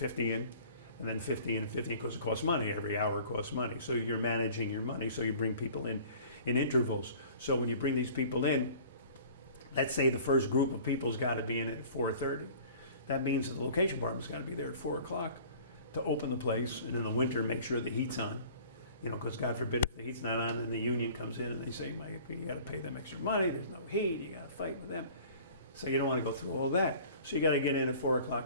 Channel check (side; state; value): both; inverted; correlation -0.47